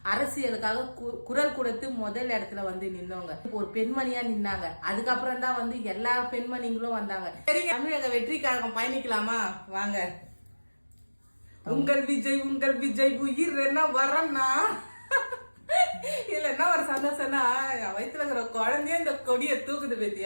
அரசியலுக்காக குரல் கொடுத்து முதல் இடத்துல நின்னவங்க. ஒரு பெண்மணியா நின்னாங்க. அதுக்கப்புறம் தான் எல்லா பெண்மணிகளும் வந்தாங்க. சரி, தமிழக வெற்றி கழகம் பயணிக்கலாமா வாங்க. உங்கள் விஜய் உயிர் என்ன வரன்னா இல்ல என்ன ஒரு சந்தோஷம்னா வயிற்றுல இருக்கிற குழந்தைய இந்த கொடியை தூக்குது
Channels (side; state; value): both; inverted; correlation -1.00